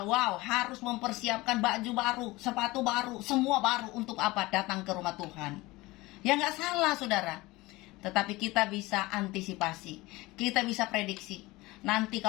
wow, harus mempersiapkan baju baru, sepatu baru, semua baru untuk apa? Datang ke rumah Tuhan. Ya nggak salah, saudara. Tetapi kita bisa antisipasi, kita bisa prediksi. Nanti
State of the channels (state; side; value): quieter; right; 20.8 dB